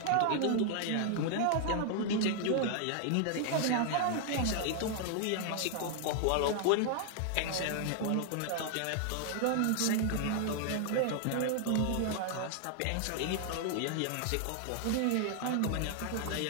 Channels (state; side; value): different; both; correlation 0.00